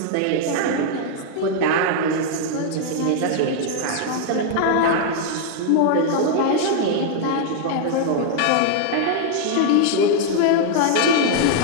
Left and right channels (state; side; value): different; both; correlation 0.00